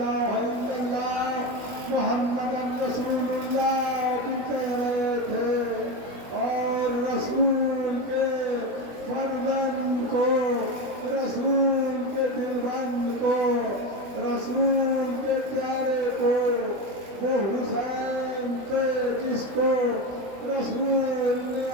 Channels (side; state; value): left; late; 21 ms